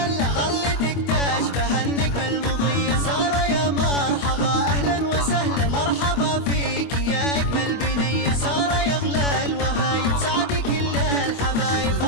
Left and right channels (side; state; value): right; late; 25 ms